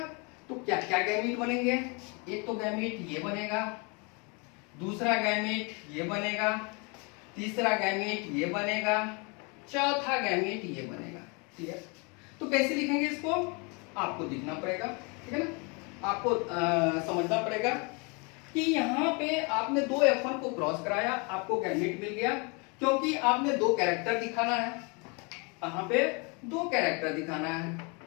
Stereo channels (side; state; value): right; quieter; 31.5 dB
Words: तो क्या क्या गैमीट बनेंगे, एक तो गैमीट ये बनेगा, दूसरा गैमीट ये बनेगा, तीसरा गैमीट ये बनेगा, चौथा गैमीट ये बनेगा। ठीक है, तो कैसे लिखेंगे इसको आपको दिखना पड़ेगा, ठीक है ना, आपको समझना पड़ेगा कि यहाँ पे आपने दो F1 को क्रॉस कराया, आपको गैमीट मिल गया, क्योंकि आपने दो कैरेक्टर दिखाना है, यहाँ पे दो कैरेक्टर दिखाना है,